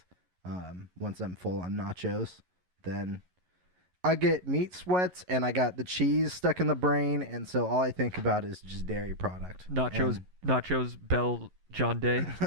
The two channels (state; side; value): late; left; 11 ms